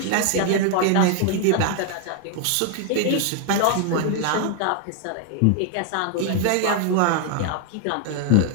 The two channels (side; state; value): both; different; correlation 0.00